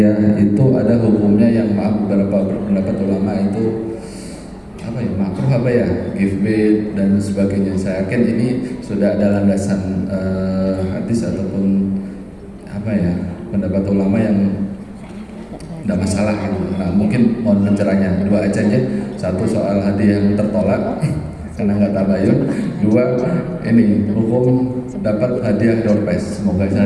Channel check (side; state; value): both; identical; correlation 1.00